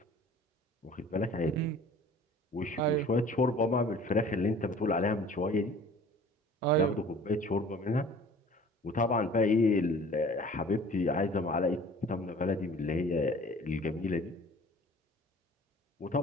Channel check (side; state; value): both; normal; correlation 0.47